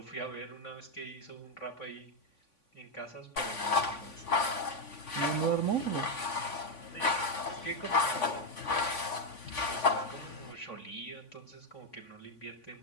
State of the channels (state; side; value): late; right; 3.5 ms